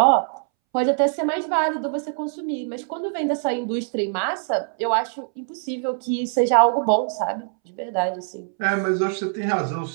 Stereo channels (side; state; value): left; silent; 63 dB below the other